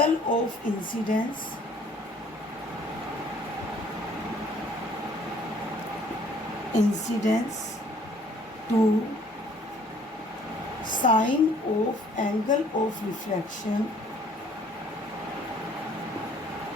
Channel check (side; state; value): both; normal; correlation 0.58